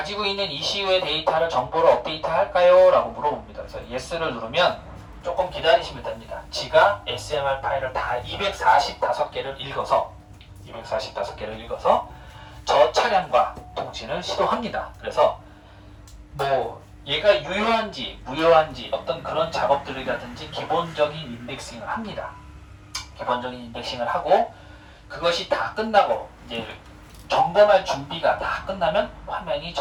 있는 ECU의 데이터를 정보로 업데이트 할까요? 라고 물어봅니다. 그래서 Yes를 누르면 조금 기다리시면 됩니다. 지가 SMR 파일을 다 245개를 읽어서 저 차량과 통신을 시도합니다. 그래서 뭐 얘가 유효한지 무효한지 어떤 그런 작업들이라든지 기본적인 인덱싱을 합니다. 기본적인 인덱싱을 하고 그것이 다 끝나고 이제 점검할 준비가 다 끝나면 화면이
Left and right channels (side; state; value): both; identical; correlation 1.00